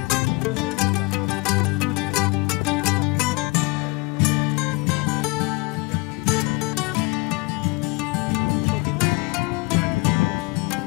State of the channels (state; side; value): quieter; right; 26.7 dB